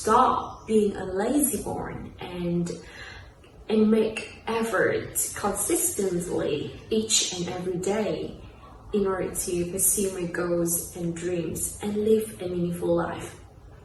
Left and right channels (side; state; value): both; identical; correlation 1.00